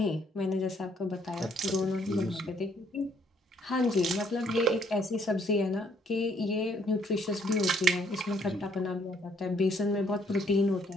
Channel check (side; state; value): both; normal; correlation 0.66